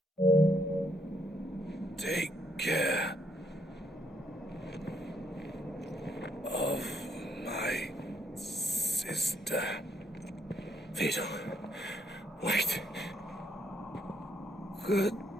Take care of my sister. Theodore, wait.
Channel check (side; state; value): both; normal; correlation 0.72